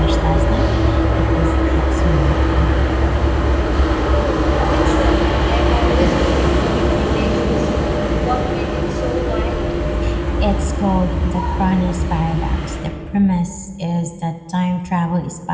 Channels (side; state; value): both; identical; correlation 1.00